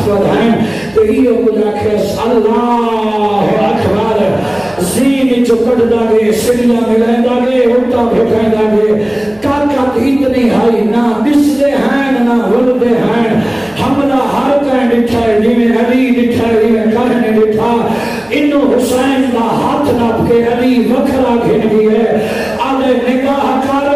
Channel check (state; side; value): noise; right; hum, 29 dB below the sound